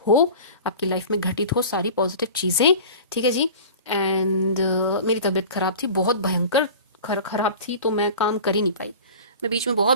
आपकी लाइफ में घटित हो सारी पॉजिटिव चीज़ें। ठीक है जी, एंड मेरी तबीयत खराब थी, बहुत भयंकर खराब थी, तो मैं काम कर ही नहीं पाई। मैं बीच में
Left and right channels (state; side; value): inverted; both; correlation -0.38